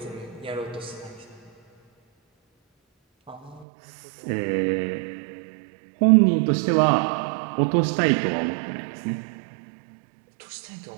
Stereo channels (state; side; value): drops out; left; at 3.7 s